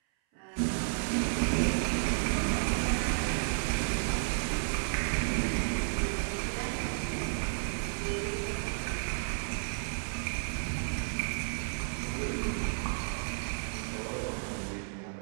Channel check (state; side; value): silent; left; 56 dB below the other